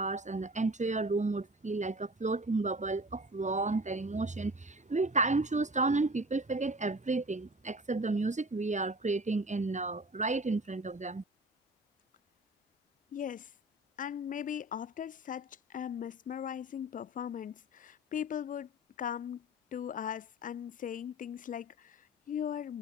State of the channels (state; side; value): normal; both; correlation 0.41